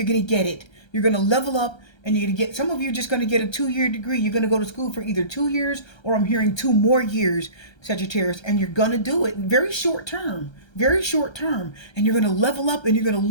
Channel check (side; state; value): right; late; 1.3 ms